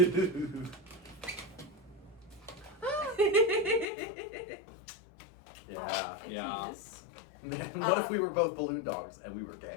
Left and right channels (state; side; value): drops out; right; at 3.9 s